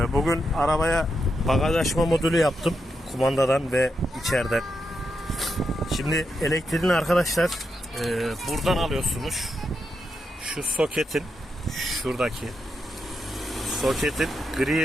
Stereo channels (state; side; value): normal; both; correlation 0.85